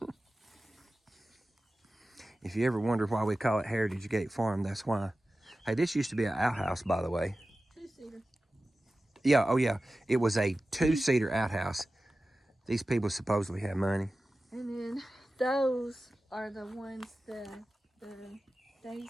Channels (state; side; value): normal; both; correlation 0.95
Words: If you ever wonder why we call it Heritage Gate Farm, that's why. Hey, this used to be an outhouse, by the way. 2-seater. Yeah, oh yeah. It was a 2-seater outhouse. These people supposedly have money. And then those are the ones, the